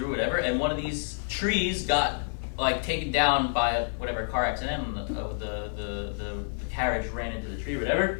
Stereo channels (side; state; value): right; silent; 59 dB below the other